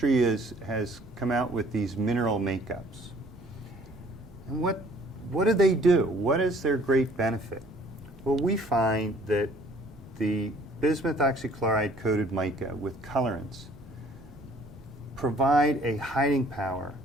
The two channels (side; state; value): both; normal; correlation 0.57